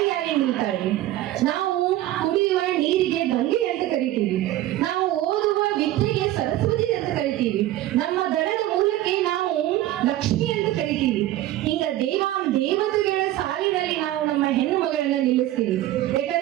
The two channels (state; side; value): quieter; left; 14.7 dB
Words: ನಿಲ್ತಾಳೆ. ನಾವು ಕುಡಿಯುವ ನೀರಿಗೆ ಗಂಗೆ ಅಂತ ಕರಿತೀವಿ, ನಾವು ಓದುವ ವಿದ್ಯೆಗೆ ಸರಸ್ವತಿ ಅಂತ ಕರಿತೀವಿ, ನಮ್ಮ ದನದ ಮೂಲಕ್ಕೆ ನಾವು ಲಕ್ಷ್ಮಿ ಅಂತ ಕರಿತೀವಿ. ಹಿಂಗ ದೇವತೆಗಳ ಸಾಲಿನಲ್ಲಿ ನಾವು ನಮ್ಮ ಹೆಣ್ಣು ಮಗಳನ್ನ ನಿಲ್ಲಿಸ್ತೀವಿ.